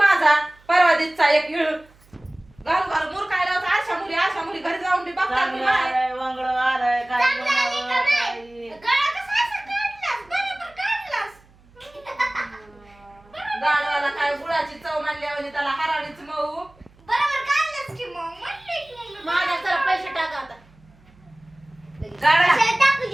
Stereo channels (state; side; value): noise; right; hum, 28 dB below the sound